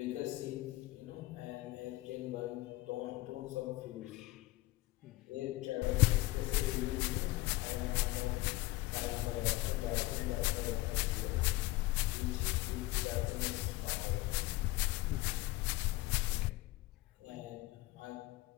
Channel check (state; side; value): quieter; right; 19.5 dB